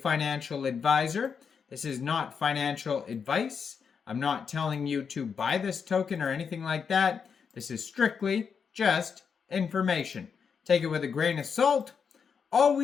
advisor. This is not financial advice. I'm not telling you to buy this token or anything like that. This is strictly just information. Take it with a grain of salt.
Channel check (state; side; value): quieter; right; 6.4 dB